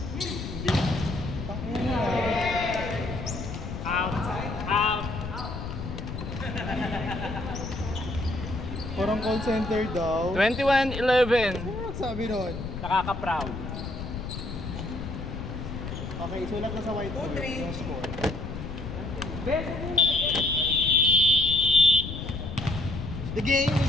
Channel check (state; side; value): noise; left; rumble, 7 dB below the sound